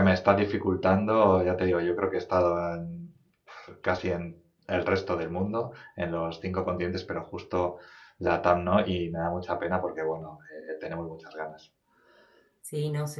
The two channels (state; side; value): identical; both; correlation 1.00